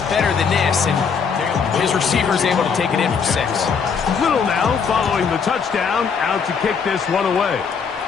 better than this, and his receiver is able to take it in for 6. Little now following the touchdown, out to kick this one away.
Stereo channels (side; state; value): right; quieter; 6.1 dB